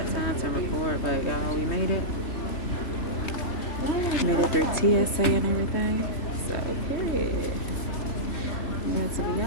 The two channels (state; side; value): late; right; 3.1 ms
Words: time to record, but y'all, we made it. Made it through TSA and everything. So, period. I'm glad to be